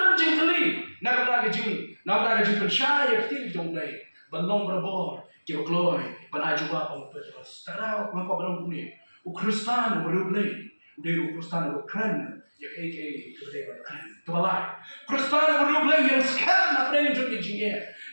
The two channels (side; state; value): both; inverted; correlation -1.00